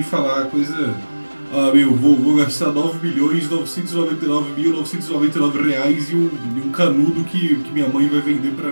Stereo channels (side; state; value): both; inverted; correlation -1.00